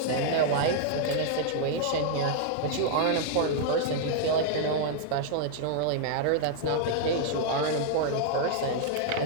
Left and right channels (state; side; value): different; both; correlation -0.01